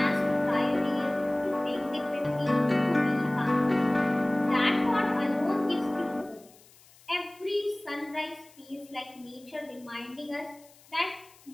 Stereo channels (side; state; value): left; noise; hiss, 26 dB below the sound